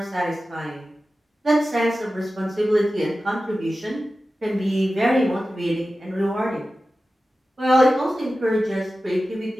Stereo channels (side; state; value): both; normal; correlation 0.94